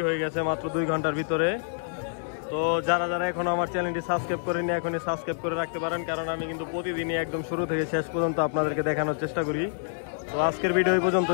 হয়ে গেছে মাত্র 2 ঘন্টার ভিতরে। তো যারা যারা এখন আমার চ্যানেলটি সাবস্ক্রাইব করেনি এখনই সাবস্ক্রাইব করে রাখতে পারেন, কারণ আমি কিন্তু প্রতিদিনই একদম শুরু থেকে শেষ পর্যন্ত আপনাদেরকে দেখানোর চেষ্টা করি। তো আজকের ভিডিও এই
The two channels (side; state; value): right; silent; digital silence